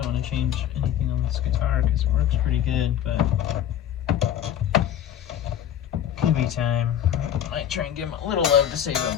want to change anything on this guitar because it works pretty good, but could be time. Might try and give them a little love to save them,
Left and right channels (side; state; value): right; quieter; 10.2 dB